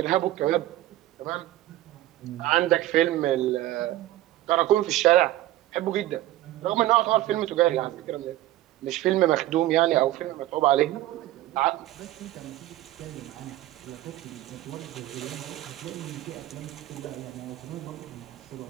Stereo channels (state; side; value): quieter; left; 15.3 dB